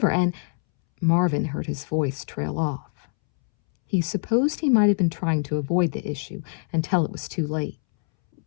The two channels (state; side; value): silent; right; 62 dB below the other